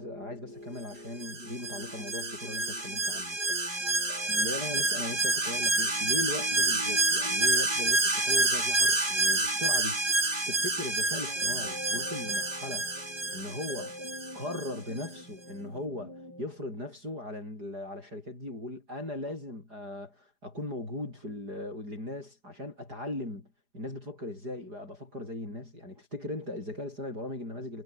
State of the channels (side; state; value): left; late; 4.9 ms